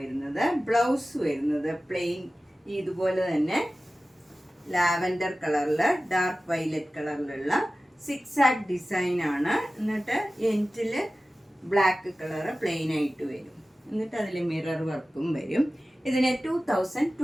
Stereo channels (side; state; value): both; normal; correlation 0.96